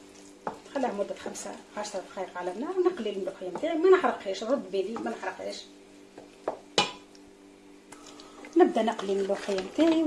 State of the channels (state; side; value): identical; both; correlation 1.00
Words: خليها مدة 5-10 دقائق على النار. نقلي الملوخية نتاعي، ما نحرقهاش، رد بالي ما نحرقهاش. نبدا نقلي الملوخية نتاعي